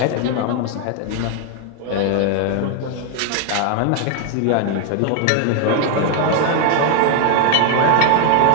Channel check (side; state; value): both; different; correlation 0.00